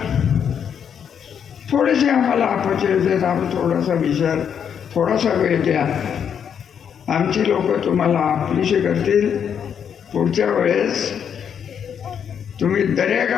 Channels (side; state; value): right; quieter; 7.9 dB